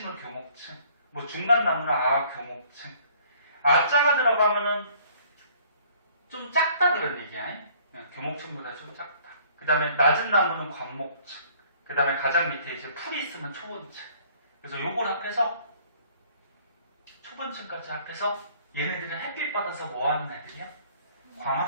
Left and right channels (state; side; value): inverted; both; correlation -0.58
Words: 교목층, 뭐 중간 나무는 아교목층. 아자가 들어가면은 좀 작다 그런 얘기야. 교목층보다 좀 작다. 그 다음에 낮은 나무는 관목층. 그 다음에 가장 밑에 이제 풀이 있으면 초본층. 그래서 요걸 합해서 초본층까지 합해서 얘네들은 햇빛 받아서 뭐 하는 애들이야?